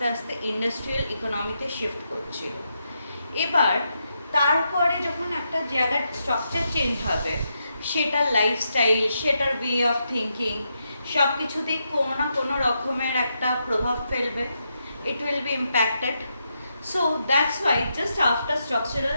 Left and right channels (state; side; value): inverted; both; correlation -0.83